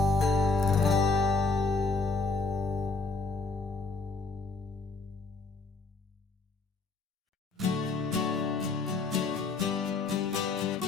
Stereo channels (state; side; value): quieter; right; 4.0 dB